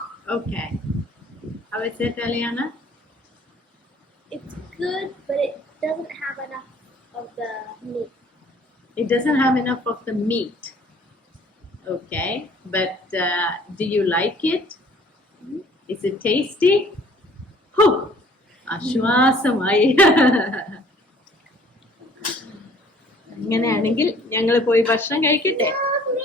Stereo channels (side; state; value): both; normal; correlation 0.55